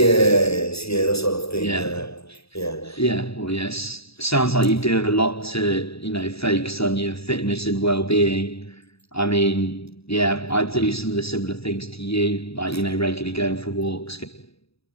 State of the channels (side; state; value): right; late; 0.77 ms